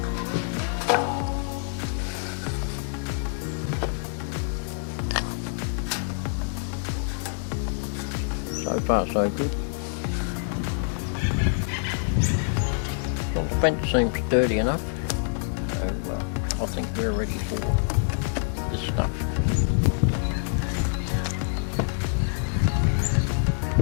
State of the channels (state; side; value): silent; right; digital silence